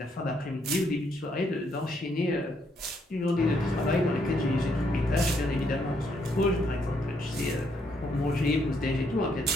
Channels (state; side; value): normal; both; correlation 0.73